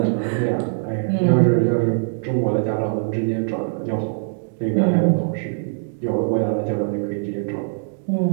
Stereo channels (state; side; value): silent; left; digital silence